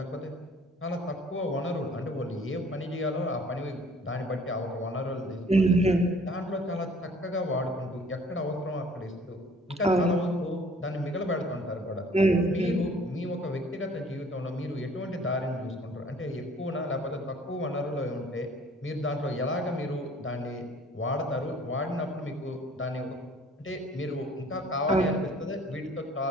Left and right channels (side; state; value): both; normal; correlation 0.54